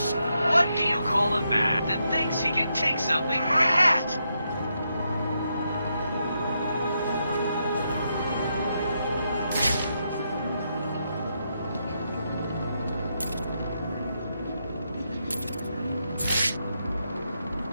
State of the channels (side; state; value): both; inverted; correlation -0.82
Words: What do you call a man that thinks he can take something for a hat?